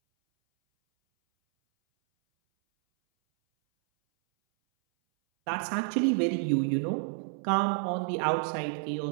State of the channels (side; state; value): left; silent; 58 dB below the other